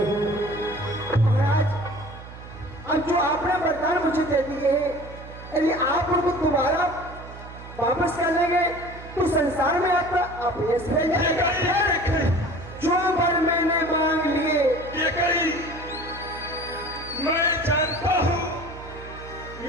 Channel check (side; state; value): right; noise; hum, 15 dB below the sound